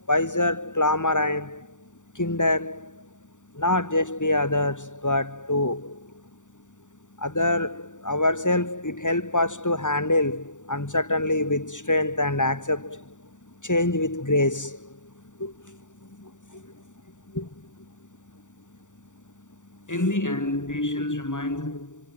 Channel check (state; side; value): late; right; 0.86 ms